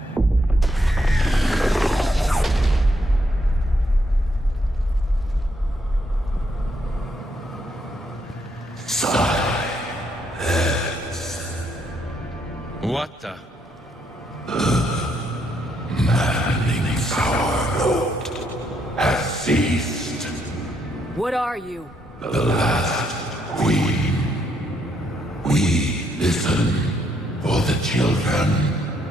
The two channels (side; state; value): both; normal; correlation 0.75